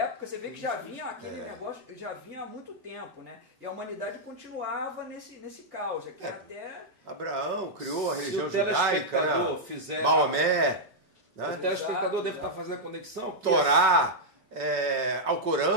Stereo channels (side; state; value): both; normal; correlation -0.06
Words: você vê que já vinha aquele negócio, já vinha há muito tempo, né? E a humanidade continuava nesse caos. Até Abraão criou a religião judaica, né? Maomé. Né? O telespectador deve estar fazendo a conexão. Torá.